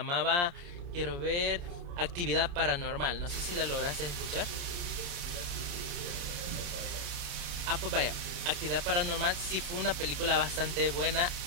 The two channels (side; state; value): left; late; 29 ms